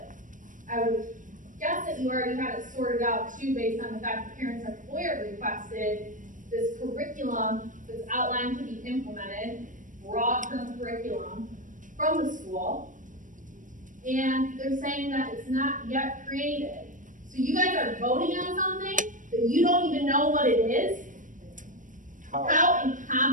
I would guess that you already had it sorted out too, based on the fact that parents have FOIA requested this curriculum that's outlined to be implemented, broad-term curriculum from the school, and they're saying that it's not yet created. So you guys are voting on something that you don't even know what it is? How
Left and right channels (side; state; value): left; late; 0.38 ms